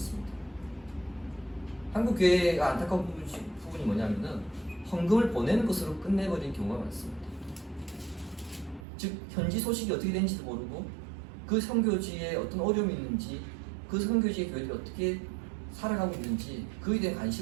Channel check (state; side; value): drops out; left; at 8.8 s